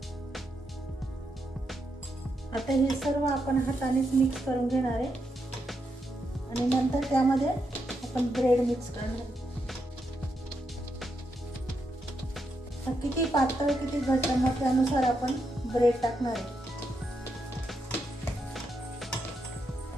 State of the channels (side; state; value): both; normal; correlation 0.82